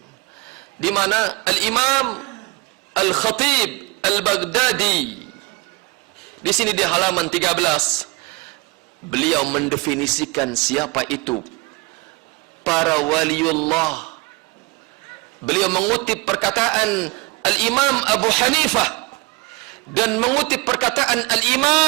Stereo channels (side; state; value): left; quieter; 25.3 dB